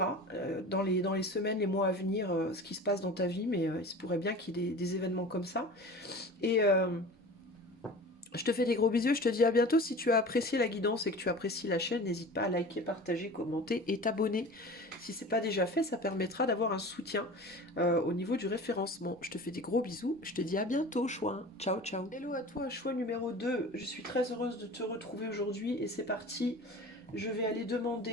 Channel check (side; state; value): both; normal; correlation 0.37